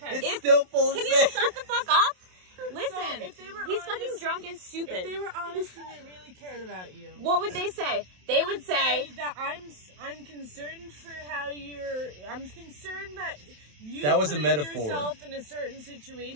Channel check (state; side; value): late; left; 27 ms